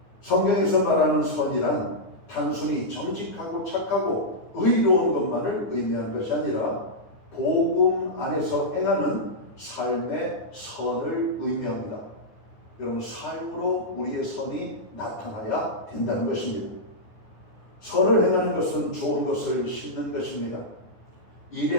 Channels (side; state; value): right; late; 9.4 ms